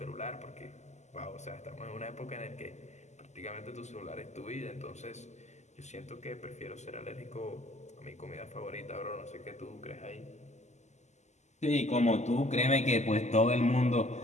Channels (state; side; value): late; right; 0.33 ms